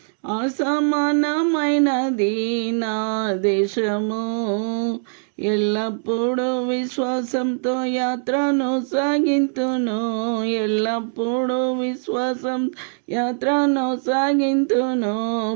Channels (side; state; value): left; silent; digital silence